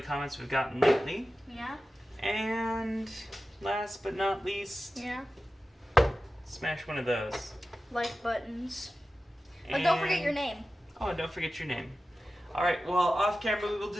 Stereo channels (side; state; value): both; normal; correlation 0.94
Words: the comments we've gotten lately. Yeah. And last but not least, Yeah. smash one of those. Like buttons. But don't forget your name. Oh, and don't forget your name. All right, well, off camera we will